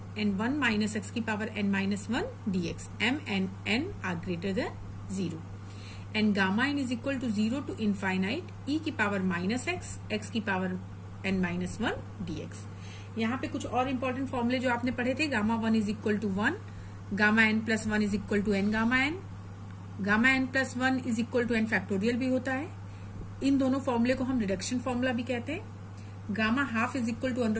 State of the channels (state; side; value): identical; both; correlation 1.00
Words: and 1 minus x की power n minus 1 dx m and n are greater than 0 and gamma n is equal to 0 to infinite e की power minus x की power n minus 1 dx। यहाँ पे कुछ और important फॉर्मूले जो आपने पढ़े थे, gamma 1 is equal to 1, gamma n plus 1 is equal to n gamma n, gamma n plus 1 is equal to n factorial भी होता है। इन दोनों फॉर्मूले को हम रिडक्शन फॉर्मूला भी कहते हैं। Gamma half is equal to